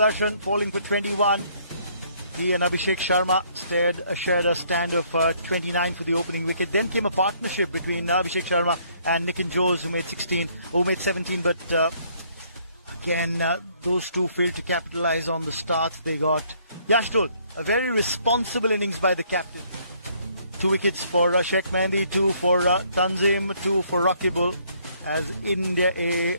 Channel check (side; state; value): both; inverted; correlation -0.65